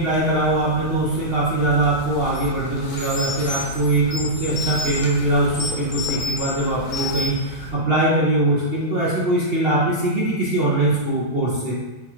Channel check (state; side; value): normal; both; correlation -0.11